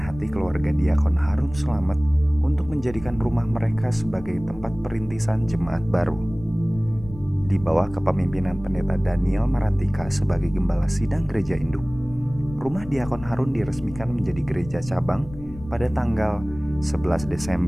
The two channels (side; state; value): left; noise; rumble, 15 dB below the sound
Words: keluarga diakon Harun Slamet untuk menjadikan rumah mereka sebagai tempat perintisan jemaat baru. Di bawah kepemimpinan Pendeta Daniel Marantika sebagai Gembala Sidang Gereja Induk, rumah diakon Harun diresmikan menjadi gereja cabang pada tanggal 11